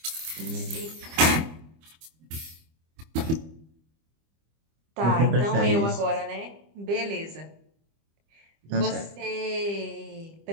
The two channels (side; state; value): left; late; 25 ms